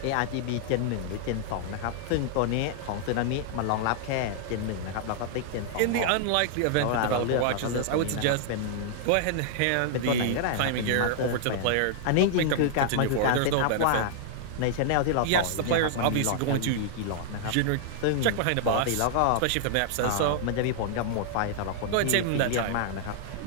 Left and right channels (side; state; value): both; different; correlation -0.01